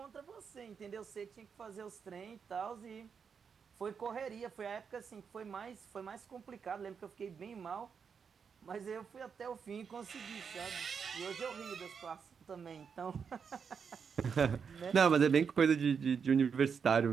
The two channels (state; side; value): quieter; left; 6.4 dB